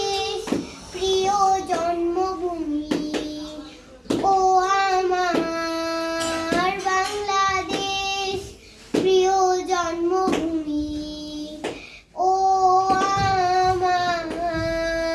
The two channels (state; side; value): identical; both; correlation 1.00